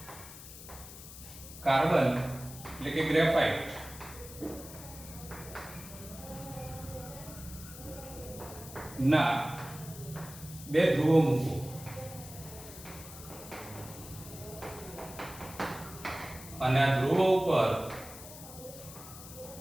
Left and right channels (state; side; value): noise; left; hiss, 14 dB below the sound